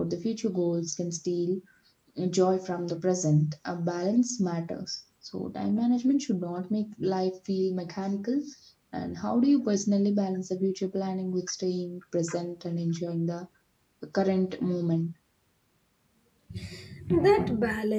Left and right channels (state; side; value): identical; both; correlation 1.00